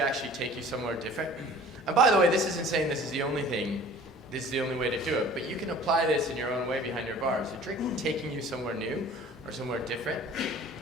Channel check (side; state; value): both; normal; correlation 0.47